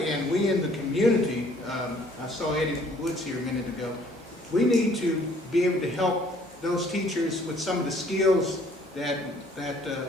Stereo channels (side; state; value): both; normal; correlation 0.59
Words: we in the community, I saw Eddie Woods here a minute ago, we need to be able to help those teachers with some of the skills that